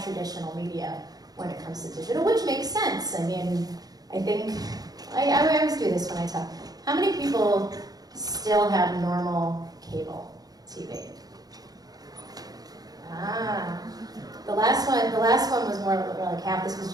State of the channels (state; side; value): late; left; 0.19 ms